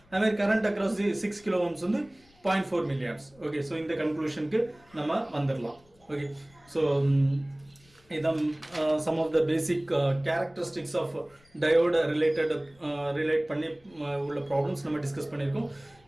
அதே current across 6 kilo ohms வந்து 0.4 milliamps. Okay, so இந்த கன்க்ளூஷனுக்கு நம்ம வந்துடலாம். Okay, so இதான் some of the basic characteristics of diode relate பண்ணி உள்ள ப்ராப்ளம்ஸ் நம்ம டிஸ்கஸ் பண்ணியிருக்கோம்.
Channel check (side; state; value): left; noise; rumble, 30 dB below the sound